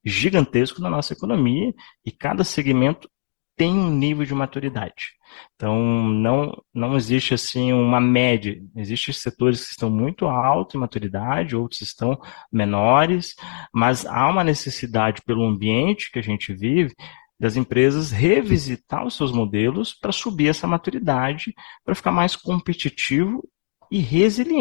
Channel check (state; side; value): silent; right; digital silence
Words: gigantesco na nossa economia e cada segmento tem um nível de maturidade. Então, não existe assim uma média. Existem setores que estão muito altos em maturidade, outros estão menores, mas há uma necessidade pelo ambiente que a gente vive das empresas revisitar os seus modelos para subir essa maturidade, para ficar mais competitivo e